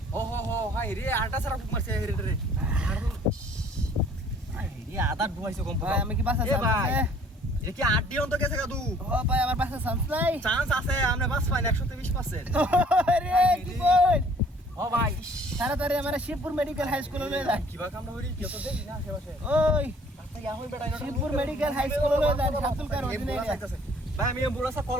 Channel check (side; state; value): both; normal; correlation 0.56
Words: ও হো হাই রে আটা সারা মারছে রে আই রে আদা ডুবাইছে কম ভাই আমি কি বাসা এ ভাই চান্স এটা কি 8 অন্ত গেছে কাদু ও ভাই আমার বাসা চান্স নাই চান্স আছে আমরা বাস পাই 120% আরে কি বল ও ভাই তাড়াতাড়ি আমার শিবপুর মেডিকেল হাই স্কুলে লয়ে যান কিবা কামড়া হরি কি তো দেখি না আশেপাশে ওই আচ্ছা ইয়া হই বেটা শিবপুর মেডিকেল হাই স্কুলে লয়ে যান সাতুল কার অধীনে ভাই আমি এম্বুলেন্সে কল